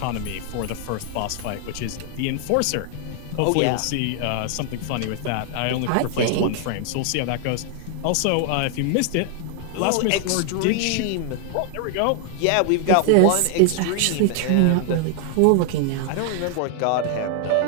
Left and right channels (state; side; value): different; both; correlation 0.00